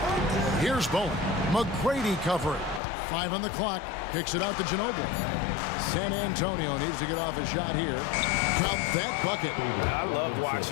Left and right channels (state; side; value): drops out; right; at 2.8 s